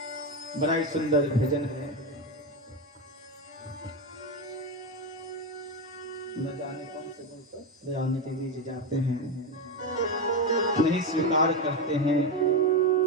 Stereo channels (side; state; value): both; normal; correlation 0.12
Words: बड़ा ही सुंदर भजन है। न जाने कौन से बोलकर दयालु के बीच जाते हैं, नहीं स्वीकार करते हैं।